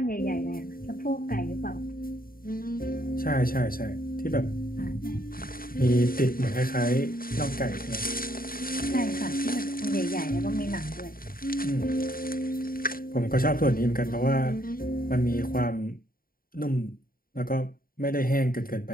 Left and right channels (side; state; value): right; late; 0.42 ms